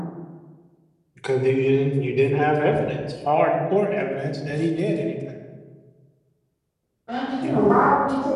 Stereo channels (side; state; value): both; identical; correlation 1.00